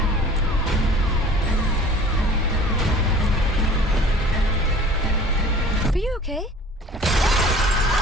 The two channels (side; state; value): both; normal; correlation 0.46